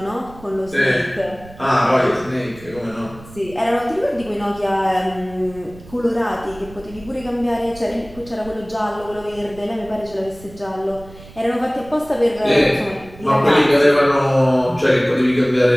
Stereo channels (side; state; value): right; noise; rumble, 19 dB below the sound